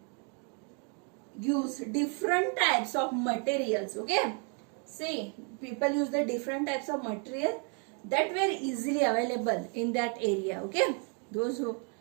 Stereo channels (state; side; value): quieter; left; 38.8 dB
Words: different types of materials. Okay, see, people use the different types of material that were easily available in that area. Okay, those who,